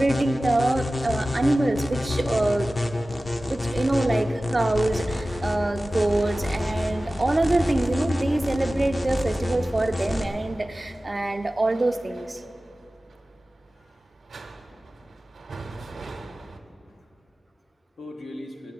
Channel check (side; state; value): both; normal; correlation 0.96